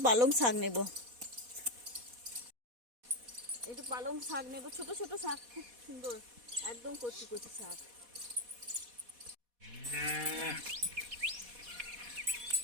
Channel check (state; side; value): late; left; 4.1 ms